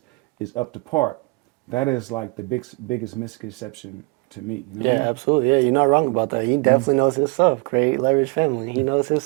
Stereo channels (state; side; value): quieter; left; 27.8 dB